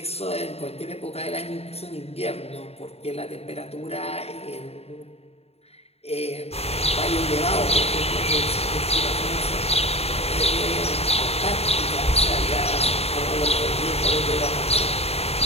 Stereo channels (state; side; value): late; right; 0.30 ms